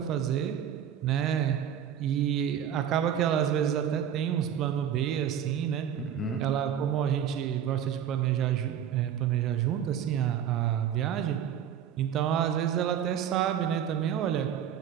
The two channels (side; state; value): left; quieter; 9.4 dB